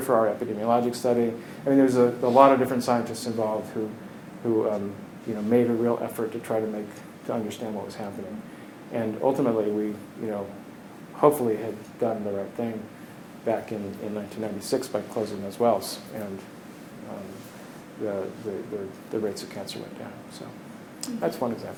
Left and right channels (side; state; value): both; identical; correlation 1.00